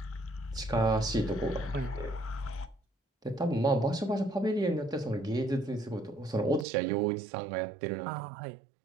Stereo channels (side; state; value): left; drops out; at 6.7 s